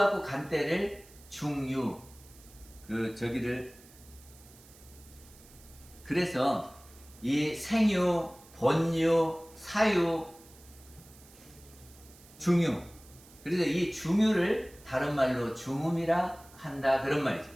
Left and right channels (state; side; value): noise; right; hiss, 23 dB below the sound